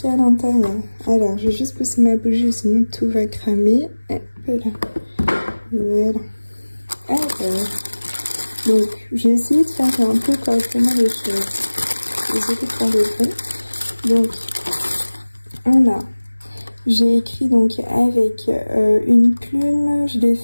y a à l'intérieur. Alors je vais juste pousser ma bougie, sinon tout va cramer. Hop là. Voilà. Alors, donc j'ai essayé de faire un peu correctement les choses. Désolée pour le bruit. Donc on a, j'ai écrit donc avec une plume, je l'ai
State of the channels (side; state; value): both; inverted; correlation -1.00